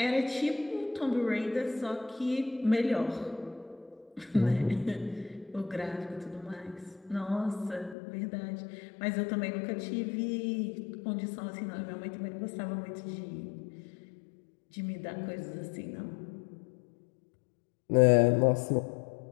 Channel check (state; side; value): drops out; right; at 8.0 s